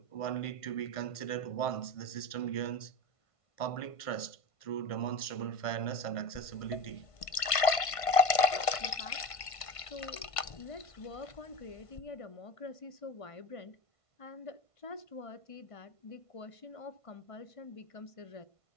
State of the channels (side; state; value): right; late; 1.5 ms